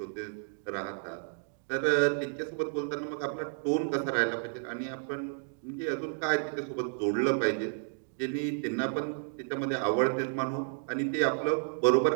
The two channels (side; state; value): left; silent; digital silence